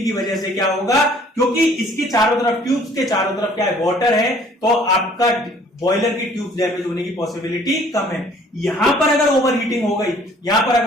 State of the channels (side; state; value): both; normal; correlation 0.56